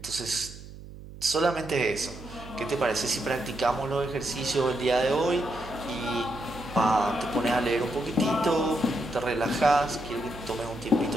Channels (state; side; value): noise; right; hum, 15 dB below the sound